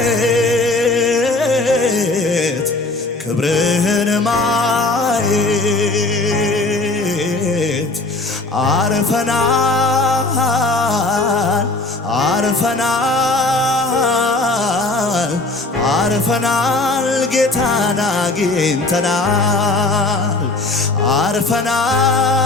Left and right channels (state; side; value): quieter; right; 3.2 dB